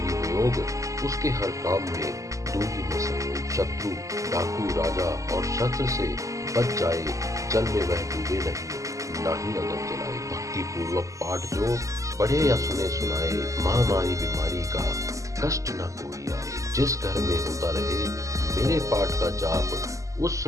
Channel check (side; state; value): left; late; 0.16 ms